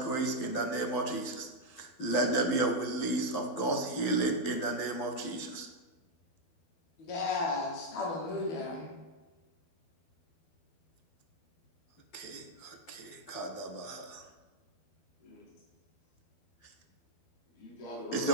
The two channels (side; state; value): right; late; 12 ms